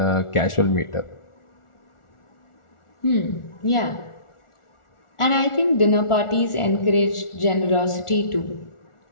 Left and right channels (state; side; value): late; right; 1.4 ms